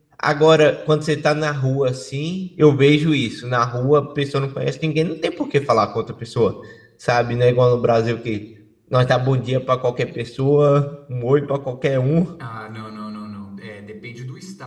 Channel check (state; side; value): identical; both; correlation 1.00